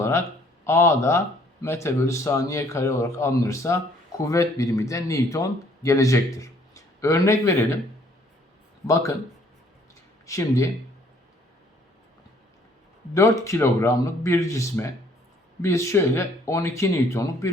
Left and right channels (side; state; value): both; normal; correlation 0.61